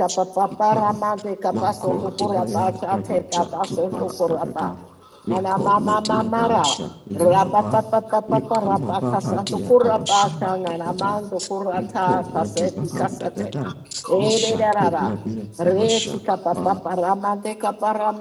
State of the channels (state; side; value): identical; both; correlation 1.00